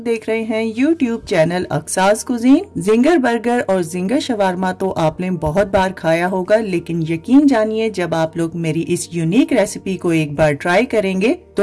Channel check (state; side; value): identical; both; correlation 1.00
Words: देख रहे हैं YouTube channel Aqsa's cuisine. Zinger burger और जिंगर शवारमा तो आपने बहुत बार खाया होगा, लेकिन यकीन जानिए जब आप लोग मेरी इस यूनिक रेसिपी को एक बार ट्राई करेंगे